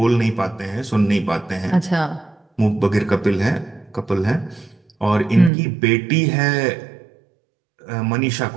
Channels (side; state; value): left; drops out; at 5.5 s